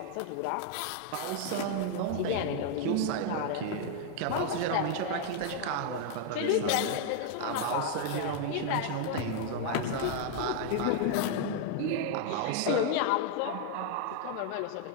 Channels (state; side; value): different; both; correlation 0.00